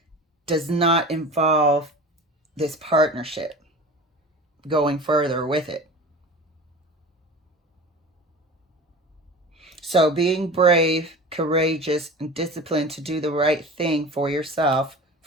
does not involve this partnership going further with it. So being brave, courageous, and disciplined to do the right thing for yourself,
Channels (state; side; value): normal; both; correlation 0.36